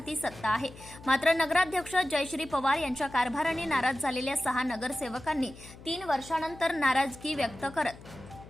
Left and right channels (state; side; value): noise; left; hum, 18 dB below the sound